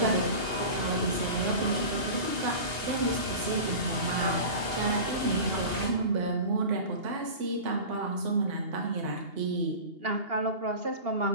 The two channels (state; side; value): late; left; 2.8 ms